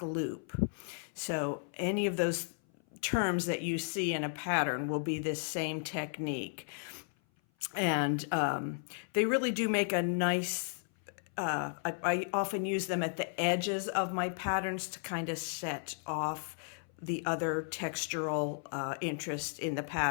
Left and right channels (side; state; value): right; silent; 55 dB below the other